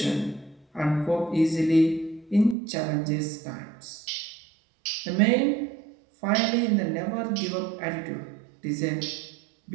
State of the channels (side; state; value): left; drops out; at 2.6 s